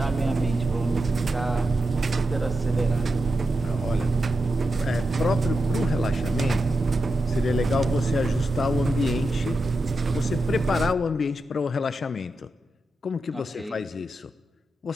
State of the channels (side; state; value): both; normal; correlation 0.88